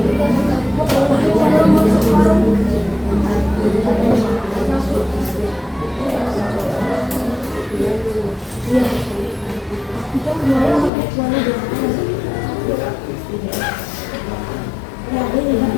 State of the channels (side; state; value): right; drops out; at 10.9 s